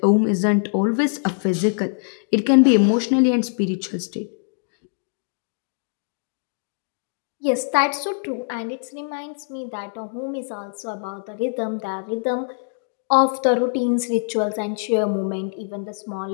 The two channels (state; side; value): silent; right; digital silence